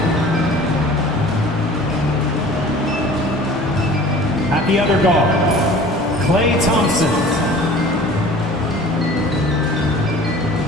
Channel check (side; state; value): both; normal; correlation 0.45